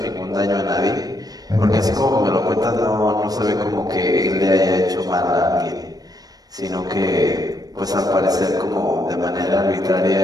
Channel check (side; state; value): left; late; 0.19 ms